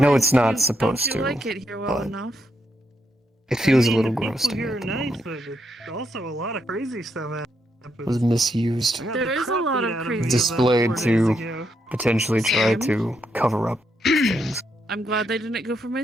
fine. it's not You- supposed don't you to, like it here well but- enough? It feels I a mean, little the gross to people me here at are the nice, moment. but also a lot of crazy stuff It was happens. misused. I got There the is a crap lot beat of out of crazy me about Displayed 4 days to ago. potentially try Same. to cover up things. I'm glad they didn't go for my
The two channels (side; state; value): both; normal; correlation 0.80